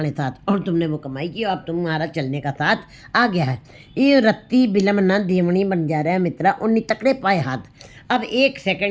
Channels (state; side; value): identical; both; correlation 1.00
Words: साथ, और तुमने वो कमाई की, अब तुम्हारा चलने का साथ आ गया है। ये रत्ती बिलम न देवणी बन जा रहा है मित्रा, उन्नी तकड़े पाए हाथ। अब 1